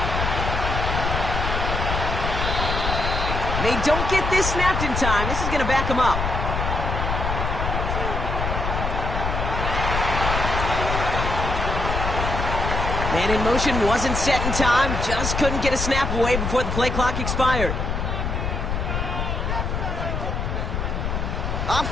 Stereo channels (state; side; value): noise; left; rumble, 2 dB below the sound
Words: They don't get this snapped in time. This is going to back them up. Man in motion wasn't set in time. Just couldn't get a snap away before the play clock expired.